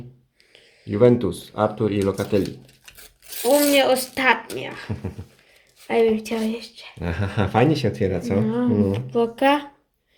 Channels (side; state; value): both; identical; correlation 1.00